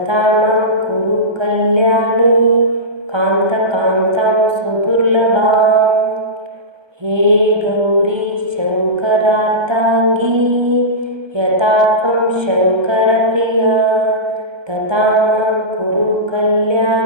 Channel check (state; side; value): late; left; 1.3 ms